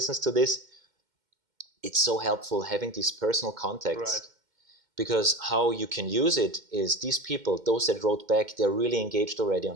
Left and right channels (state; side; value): late; left; 2.1 ms